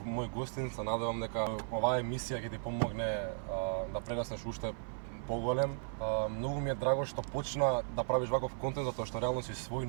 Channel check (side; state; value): left; silent; 54 dB below the other